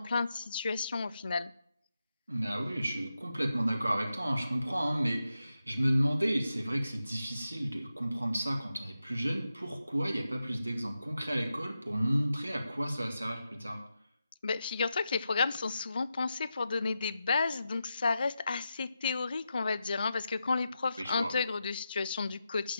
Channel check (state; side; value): inverted; both; correlation -0.89